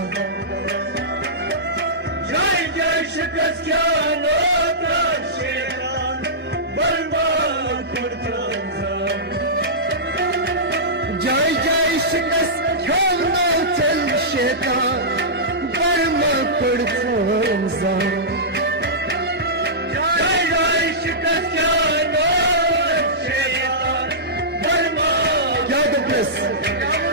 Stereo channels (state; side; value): normal; both; correlation -0.16